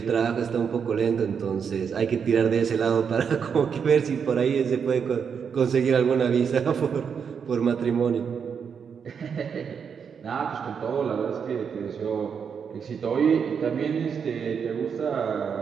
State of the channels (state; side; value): quieter; left; 6.8 dB